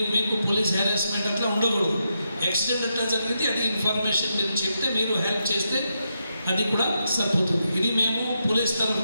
మీకు పోలీస్ హెరాస్మెంట్ అట్లా ఉండకూడదు. యాక్సిడెంట్ అట్లా జరిగింది, అది ఇన్ఫర్మేషన్ మీరు చెప్తే మీరు హెల్ప్ చేస్తే అది కూడా సరిపోతుంది. ఇది మేము పోలీస్ తరఫు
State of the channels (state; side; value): inverted; both; correlation -0.84